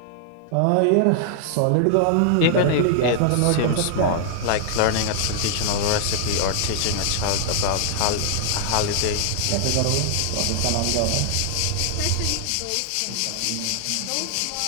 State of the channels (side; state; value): both; different; correlation 0.00